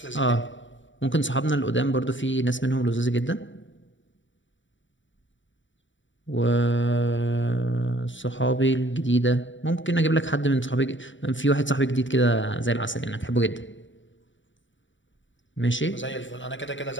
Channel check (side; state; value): right; late; 0.55 ms